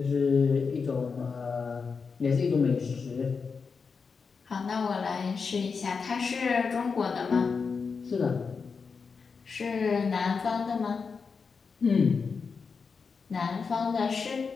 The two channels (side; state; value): right; quieter; 5.2 dB